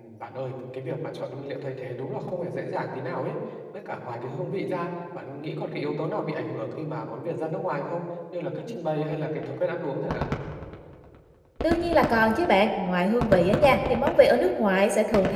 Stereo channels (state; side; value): identical; both; correlation 1.00